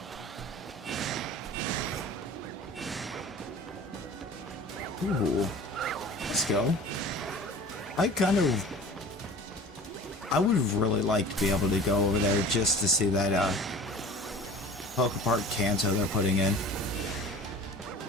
Ooh, let's go. I would really like to be able to go over there just to see that Pokepark Kanto they're putting in.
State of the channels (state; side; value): normal; both; correlation 0.41